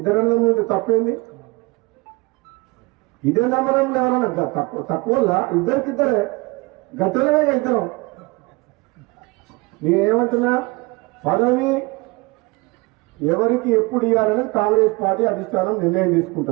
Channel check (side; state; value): left; quieter; 25.2 dB